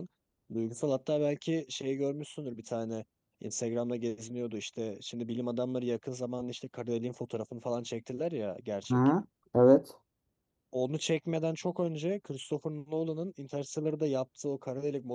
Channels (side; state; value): both; identical; correlation 1.00